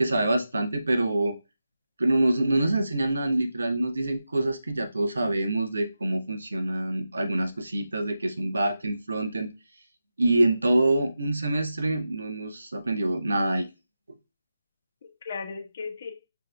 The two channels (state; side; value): inverted; both; correlation -0.91